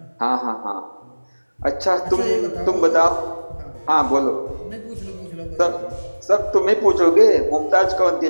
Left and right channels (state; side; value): inverted; both; correlation -1.00